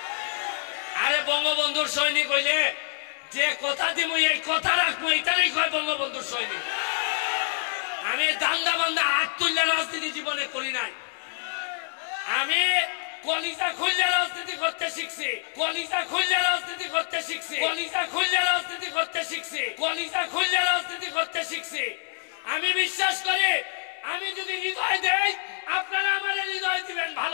আরে বঙ্গবন্ধুর সৈনিক হইলে যে কথা দিমু এই কথা রাখবো, এটারই কয় বঙ্গবন্ধুর সৈনিক। আমি দান্দা বান্দা হাত তুললে রাজনীতি জীবনে করি নাই, আমি কলিজা খুললে রাজনীতি করতে শিখছি, কলিজা খুললে রাজনীতি করতে শিখছি, কলিজা খুললে রাজনীতি করতে শিখছি, কলিজা খুললে রাজনীতি করতে শিখছি। আমি বিশ্বাস করি আমি যদি হৃদয় দেই আপনারা আমার হৃদয় দিবেন,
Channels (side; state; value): right; silent; digital silence